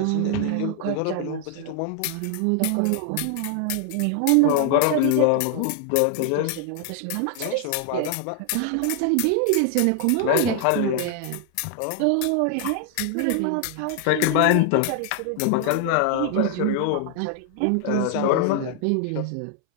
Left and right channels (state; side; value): different; both; correlation 0.00